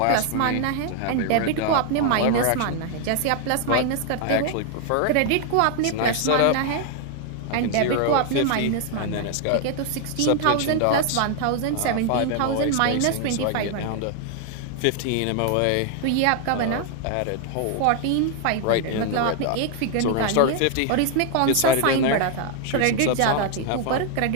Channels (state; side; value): different; both; correlation 0.00